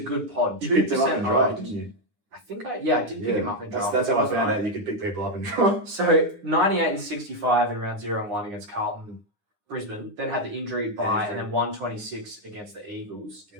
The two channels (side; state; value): left; late; 9.6 ms